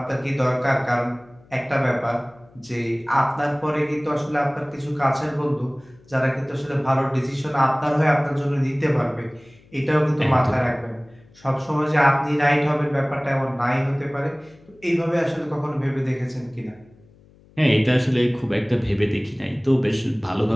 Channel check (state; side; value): noise; left; hum, 28 dB below the sound